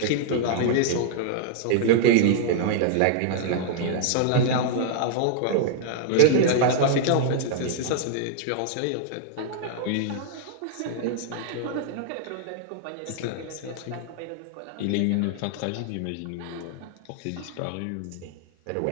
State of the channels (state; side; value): different; both; correlation -0.01